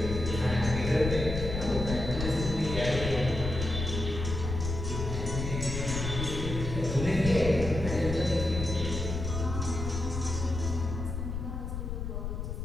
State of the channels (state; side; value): noise; left; rumble, 4 dB below the sound